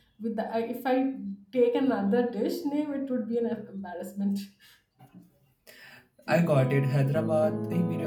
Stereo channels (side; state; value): both; identical; correlation 1.00